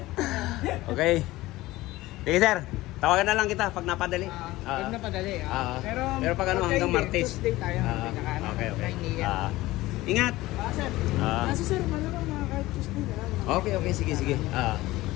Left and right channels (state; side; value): quieter; right; 18.1 dB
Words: Okay. Sige sir, tawagan na lang kita pag napadali. Pag napadali. Pero pag ano hanggang Martes. Tuesday tayo. Okay. Ingat. Sir. Kasi sir, malamang kahit Tuesday na lang. Okay, sige.